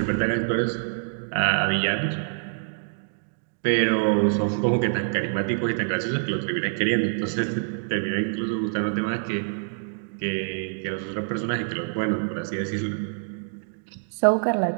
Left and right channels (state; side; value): silent; left; digital silence